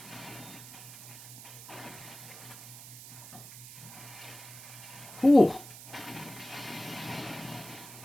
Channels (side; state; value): right; noise; hiss, 14 dB below the sound